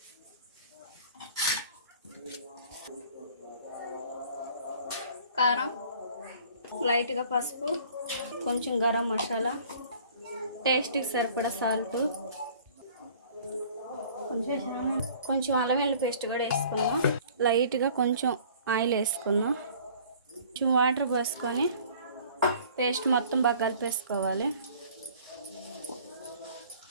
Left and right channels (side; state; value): both; inverted; correlation -0.51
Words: కారం, లైట్గా పసుపు, కొంచెం గరం మసాలా, టేస్ట్కి సరిపడా సాల్ట్, కొంచెం అల్లం వెల్లుల్లి పేస్ట్ కూడా వేసుకున్నాం. లైట్గా కొంచెం ఆయిల్ వేసుకున్నాం. కొంచెం వాటర్ పోసుకొని పేస్ట్ మొత్తం బాగా కలిపేసుకోవాలి.